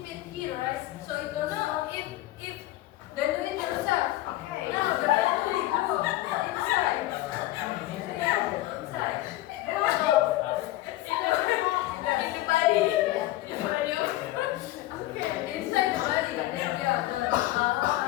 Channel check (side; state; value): right; quieter; 16.3 dB